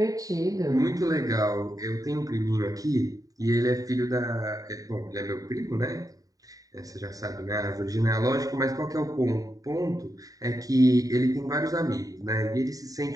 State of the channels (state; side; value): late; left; 0.17 ms